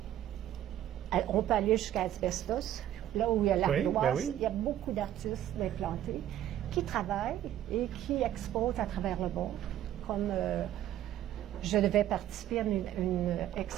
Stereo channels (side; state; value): left; quieter; 12.0 dB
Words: on peut aller jusqu'à Asbestos, là où il y a l'Ardoise, il y a beaucoup d'artistes implantés qui travaillent et qui exposent à travers le monde, comme je devais participer à une